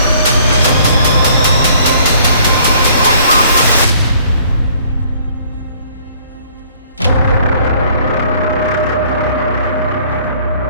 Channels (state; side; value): inverted; both; correlation -0.58